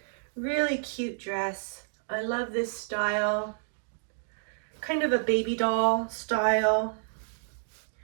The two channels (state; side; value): silent; left; digital silence